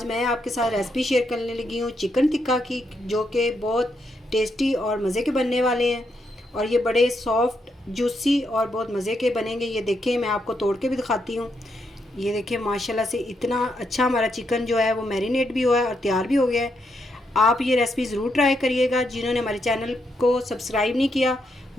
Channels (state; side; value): normal; both; correlation 0.79